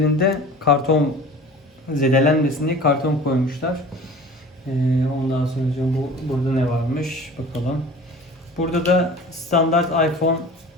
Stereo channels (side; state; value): both; normal; correlation 0.41